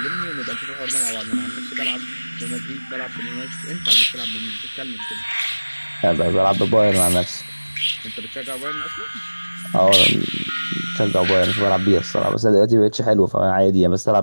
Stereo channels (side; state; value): both; inverted; correlation -1.00